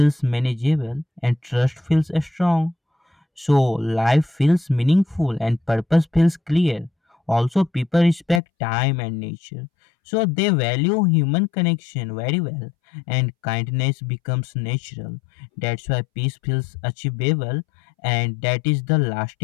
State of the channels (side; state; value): right; drops out; at 8.4 s